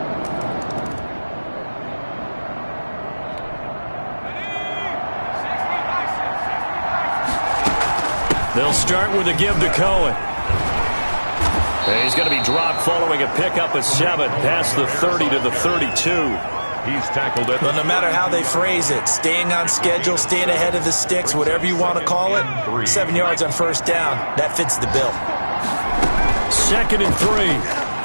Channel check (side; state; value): both; inverted; correlation -1.00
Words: They'll start with a give to Cohen. And he's going to be dropped following a pickup of 7 past the 30 to the 32. He's tackled it. Well, no matter how they phrase it, staying on schedule, staying ahead of the sticks, whatever you want to call it, 7 yards on first down, that fits the bill. 2nd and 3.